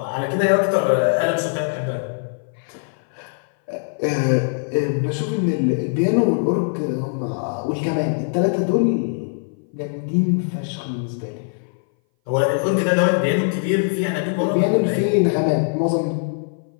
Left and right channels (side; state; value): right; silent; 59 dB below the other